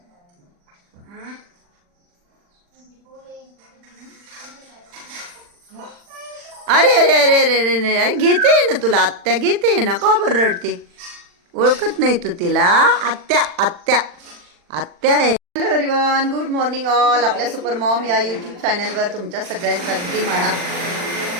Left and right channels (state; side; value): late; left; 40 ms